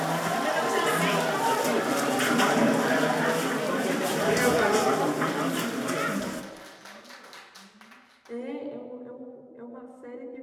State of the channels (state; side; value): identical; both; correlation 1.00